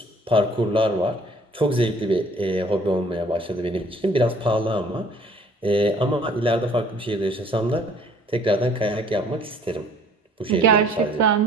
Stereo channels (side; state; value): both; normal; correlation 0.56